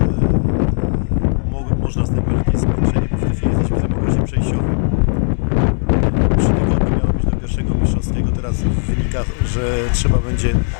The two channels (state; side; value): silent; right; digital silence